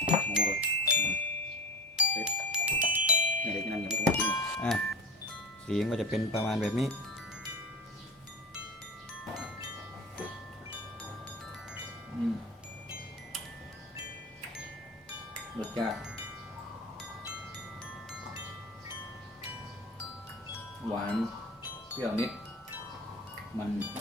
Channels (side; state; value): both; normal; correlation 0.33